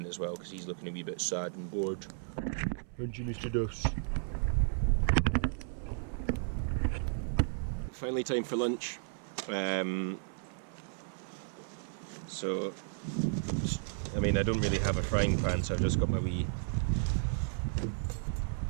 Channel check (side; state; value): left; silent; 55 dB below the other